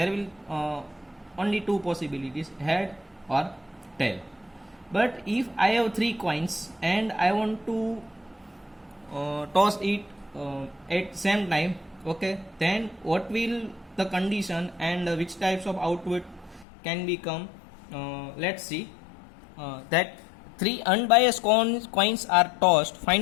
will only two possibilities, head or tail. But if I have three coins and I want to toss it at same time, okay, then what will the condition and which types of output can become, let's see, that three unbiased coins are tossed,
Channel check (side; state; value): right; drops out; at 16.7 s